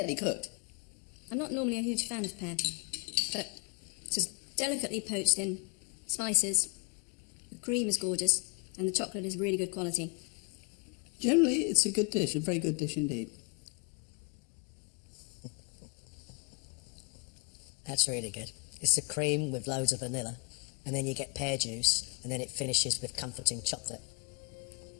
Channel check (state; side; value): quieter; right; 34.5 dB